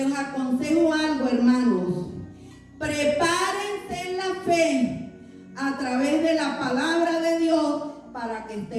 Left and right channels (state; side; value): identical; both; correlation 1.00